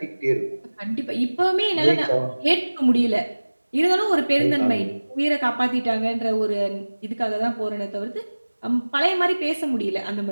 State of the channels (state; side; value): inverted; both; correlation -1.00